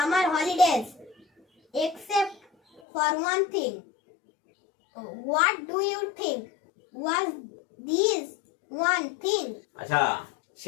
holidays except for one thing. What do you think was this one thing? আচ্ছা,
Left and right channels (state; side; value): drops out; right; at 2.8 s